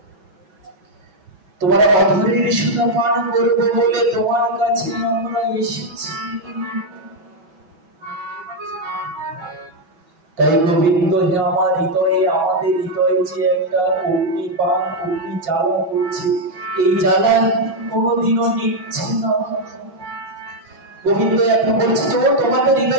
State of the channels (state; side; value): late; left; 6.1 ms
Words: তোমার অধরের সুধা পান করবো বলে তোমার কাছে আমরা এসেছি। তাই গোবিন্দ হে আমার হৃদয়ে, আমাদের হৃদয়ে যে একটা অগ্নিপান, অগ্নি জ্বালা করছে, এই জ্বালা কোনোদিনও নিচ্ছে না। গোবিন্দ এখন বলছে, তোমাদের